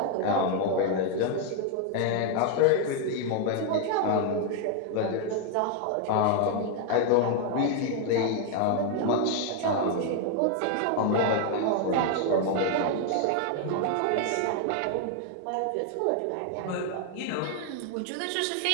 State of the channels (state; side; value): different; both; correlation 0.00